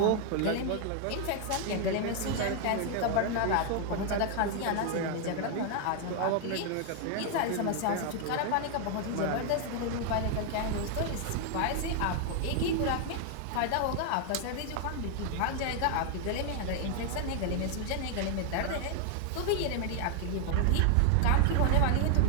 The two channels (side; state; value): both; different; correlation 0.00